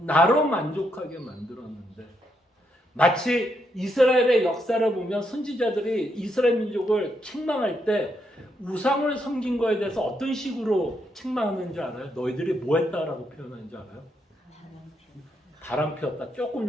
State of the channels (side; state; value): both; normal; correlation 0.78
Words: 만족하게 만들었는데 마치 이스라엘의 역사를 보면 선지자들이 이스라엘 민족을 책망할 때 우상을 섬긴 거에 대해서 어떤 식으로 책망하는지 알아요? 너희들이 뭐 했다라고 표현하는지 알아요? 바람 피웠다. 조금